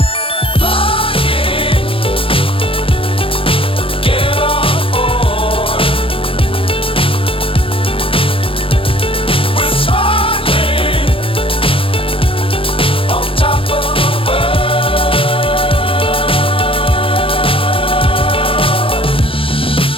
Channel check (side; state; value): right; late; 0.26 ms